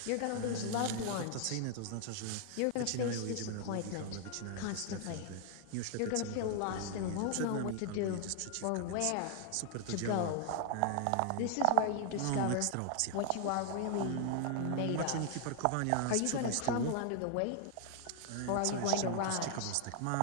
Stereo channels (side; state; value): both; different; correlation 0.00